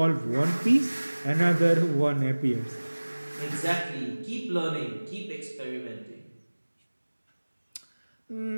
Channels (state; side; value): inverted; both; correlation -1.00